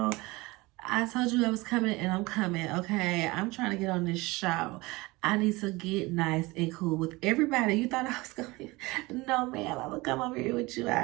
I told you I was coming and I'm coming, okay? I'm trying to get on this show. I need to get nice and cool with everybody. You thought I was going to... No, man, I'm going to come over here with you.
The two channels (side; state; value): left; quieter; 22.5 dB